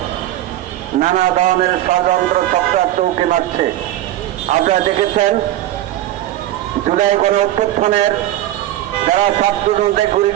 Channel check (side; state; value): left; quieter; 13.9 dB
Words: নানা ধরনের ষড়যন্ত্র চক্রার চৌকি মারছে। আপনারা দেখেছেন জুলাই গণ অভ্যুত্থানের যারা ছাত্রজনদের গুলি